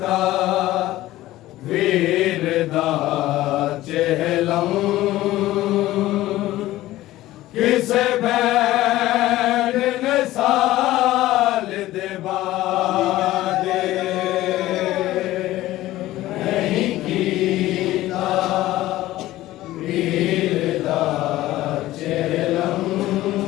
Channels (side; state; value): right; quieter; 16.0 dB